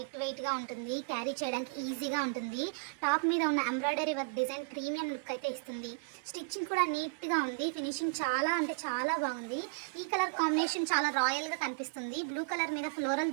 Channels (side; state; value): left; quieter; 36.8 dB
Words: వెయిట్ గా ఉంటుంది, క్యారీ చేయడానికి ఈజీగా ఉంటుంది. టాప్ మీద ఉన్న embroidery work design premium look అయితే ఇస్తుంది. స్టిచ్చింగ్ కూడా నీట్ గా ఉంది, ఫినిషింగ్ చాలా అంటే చాలా బాగుంది. ఈ కలర్ కాంబినేషన్ చాలా రాయల్ గా కనిపిస్తుంది. బ్లూ కలర్ మీద